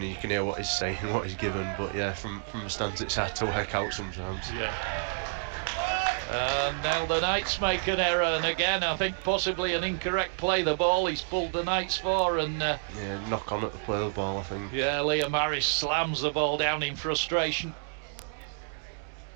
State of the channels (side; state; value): left; silent; digital silence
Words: and you can hear what he's saying, what he's given. But yeah, from the stands it's hard to work out sometimes. Yeah. Now the Knights make an error, and again I think possibly an incorrect play the ball he's pulled the Knights for, and yeah, knock on at the play the ball, I think. Yeah, Liam Harris slams the ball down in frustration.